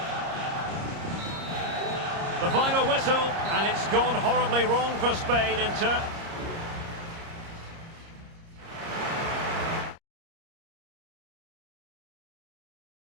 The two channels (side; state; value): left; late; 30 ms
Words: The final whistle, and it's gone horribly wrong for Spain in turn.